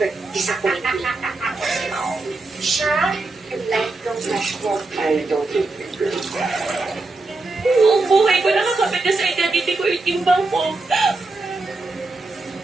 disappoint me. Siya, yung lifelong crush ko. I don't think it's good. Buong buhay ko nakakapit na sa identity ko yung timbang ko.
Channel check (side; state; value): left; quieter; 3.3 dB